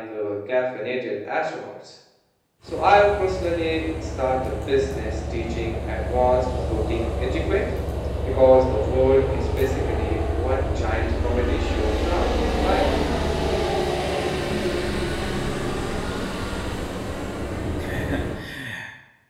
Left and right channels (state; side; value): identical; both; correlation 1.00